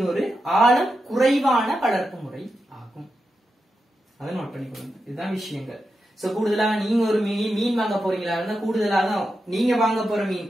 ஒரு ஆழம் குறைவான வளர்ப்பு முறை ஆகும். அதை நோட் பண்ணிக்கொள்ளுங்க, இதுதான் விஷயங்கள். சோ கூடுதலாக நீங்க ஒரு மீன் வாங்க போறீங்களா இருந்தா கூடுதலாக நீங்க வாங்க போற மீன்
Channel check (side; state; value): both; normal; correlation 0.88